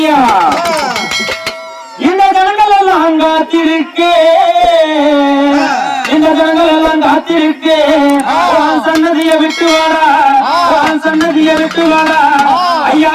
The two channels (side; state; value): both; identical; correlation 1.00